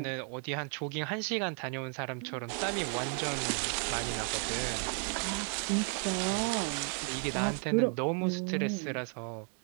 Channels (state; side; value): quieter; left; 38.0 dB